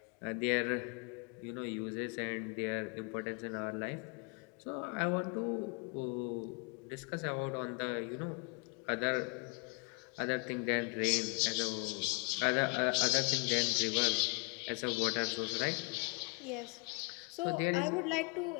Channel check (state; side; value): quieter; right; 32.2 dB